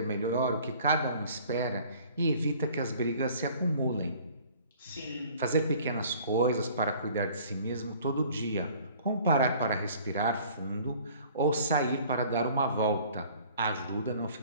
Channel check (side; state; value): both; inverted; correlation -0.52